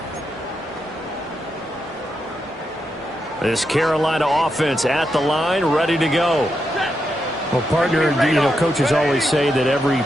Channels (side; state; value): both; normal; correlation 0.84